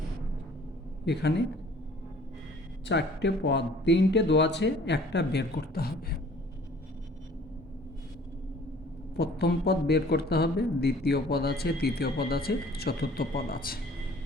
এখানে 4টে পদ, 3টে দেওয়া আছে, একটা বের করতে হবে। প্রথম পদ বের করতে হবে, দ্বিতীয় পদ আছে, তৃতীয় পদ আছে, চতুর্থ পদ আছে।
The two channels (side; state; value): both; normal; correlation 0.52